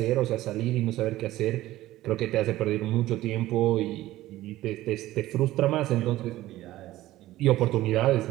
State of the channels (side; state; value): left; quieter; 15.8 dB